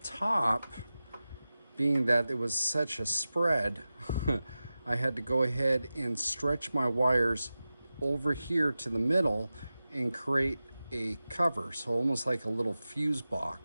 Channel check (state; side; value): inverted; both; correlation -0.95